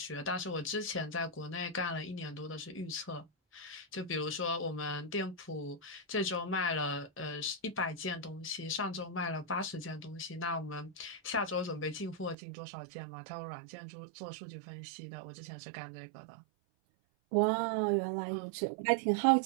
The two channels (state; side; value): drops out; left; at 12.4 s